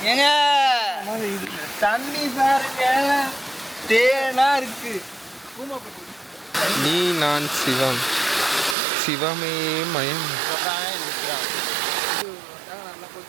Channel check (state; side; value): drops out; left; at 8.8 s